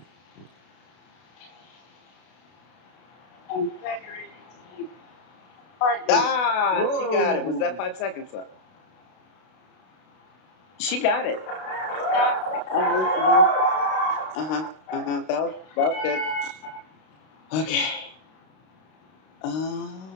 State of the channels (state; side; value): late; right; 32 ms